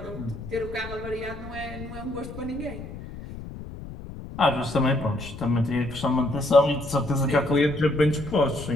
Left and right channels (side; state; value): left; noise; rumble, 12 dB below the sound